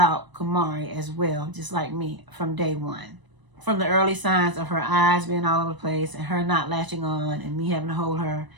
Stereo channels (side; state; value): left; late; 1.0 ms